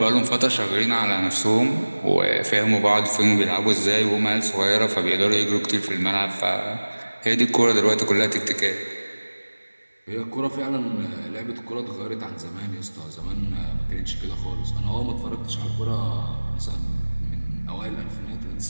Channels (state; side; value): inverted; both; correlation -1.00